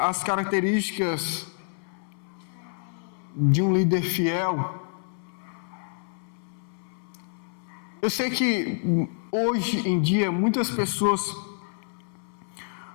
as características de um líder fiel. Eu sei que hoje em dia muitas pessoas,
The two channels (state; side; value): silent; right; 60 dB below the other